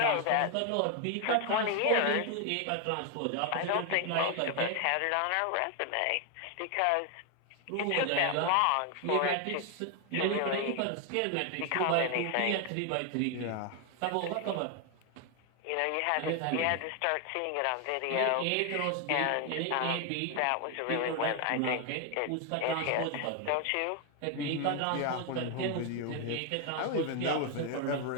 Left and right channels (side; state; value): both; different; correlation 0.01